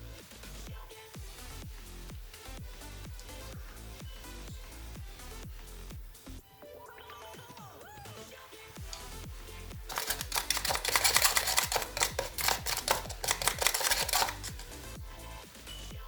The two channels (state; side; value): identical; both; correlation 1.00